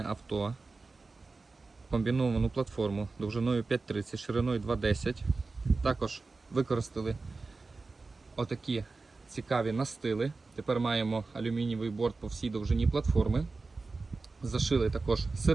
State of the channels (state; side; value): quieter; left; 3.8 dB